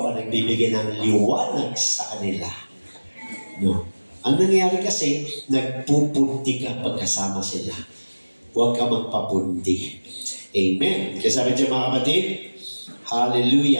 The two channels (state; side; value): inverted; both; correlation -1.00